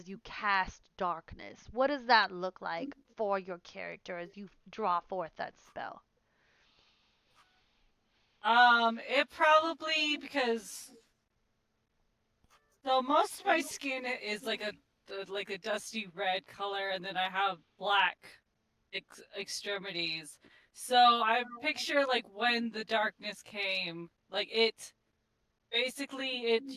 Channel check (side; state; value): both; identical; correlation 1.00